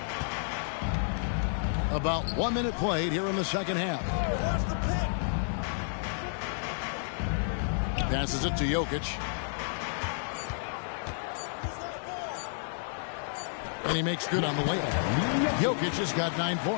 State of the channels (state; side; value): silent; right; digital silence